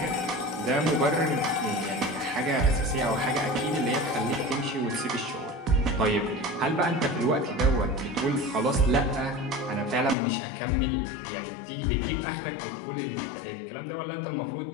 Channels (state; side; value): drops out; right; at 10.2 s